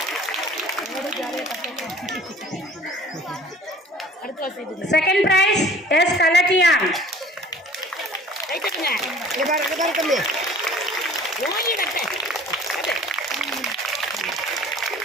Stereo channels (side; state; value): both; normal; correlation 0.48